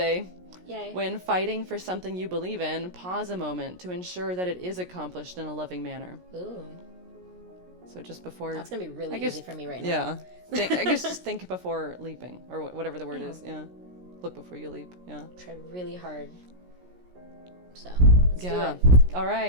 Yay. When fighting for something you believe in, pause a moment to ensure that it is accomplished in a loving manner. Ooh. So just before... That's going to be really easy for me right now. Yeah. I guess just think before leaping, or whatever the word is. Yeah. Look before you leap. Yeah. Try really hard. So, let's do it. All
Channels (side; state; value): left; late; 17 ms